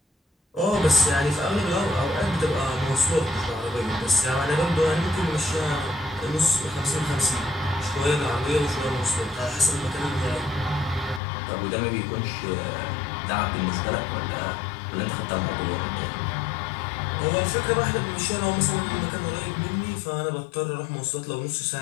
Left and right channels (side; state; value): right; drops out; at 11.2 s